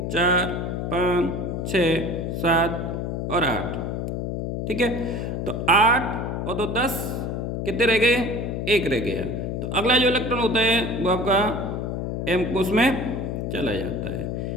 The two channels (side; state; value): left; noise; hum, 3 dB below the sound